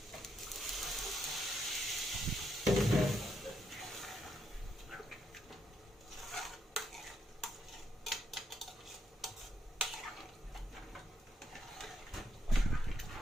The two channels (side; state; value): both; normal; correlation 0.78